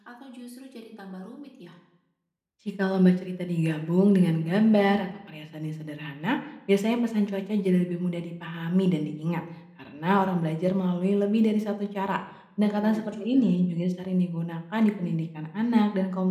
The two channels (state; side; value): identical; both; correlation 1.00